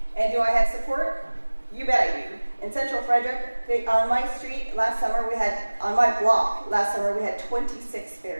And do I have support? You bet I do. In Central Frederick, on my street last summer, on my block last summer, we had 26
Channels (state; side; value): inverted; both; correlation -1.00